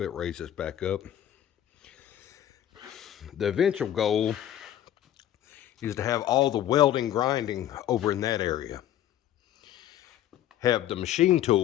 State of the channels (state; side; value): quieter; right; 11.6 dB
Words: raise this back up. The eventual goal is to have all the welding grinding over in that area. Have the machine